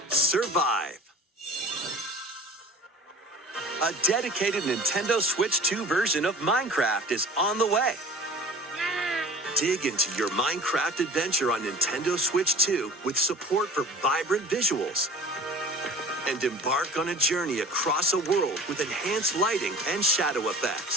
survive. A dedicated Nintendo Switch 2 version of Minecraft is on the way. Dig into your Minecraft adventure on Nintendo Switch 2 with support for vibrant visuals. And embark on a journey across a world with enhanced lighting and shadow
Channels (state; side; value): normal; both; correlation 0.42